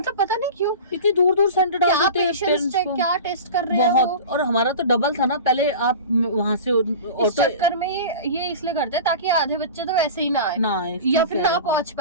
पता नहीं क्यों इतनी दूर सेंटर डाल क्या देते हैं पेशेंस पेरेंट्स चेक, को। क्या टेस्ट कर रहे हैं वो। बहुत, और हमारा तो डबल था ना, पहले आप वहां से इस ऑटो चक्कर में ये इसलिए करते हैं ताकि आधे बच्चे तो वैसे ही ना आए, ना आए, या ठीक फिर है। ना पहुंच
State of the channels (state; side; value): inverted; both; correlation -0.33